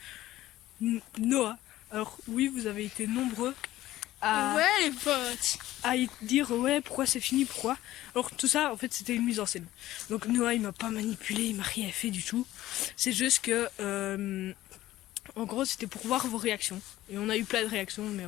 Noah. Alors oui, vous avez été nombreux Ouais les potes, à dire ouais, pourquoi c'est fini, pourquoi. Alors tout ça, en fait, c'était une mise en scène. Donc Noah, il m'a pas manipulé, il m'a rien fait du tout. C'est juste que en gros, c'était pour voir vos réactions. Et on a eu plein de réactions, mais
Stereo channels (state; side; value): quieter; right; 15.2 dB